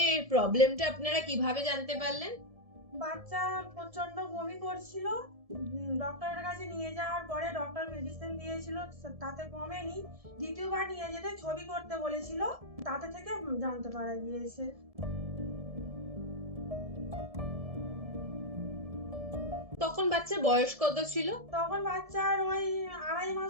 প্রবলেমটা আপনারা কিভাবে জানতে পারলেন? বাচ্চা প্রচন্ড বমি করছিল। ডক্টরের কাছে নিয়ে যাওয়ার পরে ডক্টর মেডিসিন দিয়েছিল, তাতে কমেনি। দ্বিতীয়বার নিয়ে যেতে ছবি করতে বলেছিল, তাতে থেকে জানতে পারা গিয়েছে। তখন বাচ্চার বয়স কত ছিল? তখন বাচ্চার ওই 2.5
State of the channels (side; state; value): left; late; 1.7 ms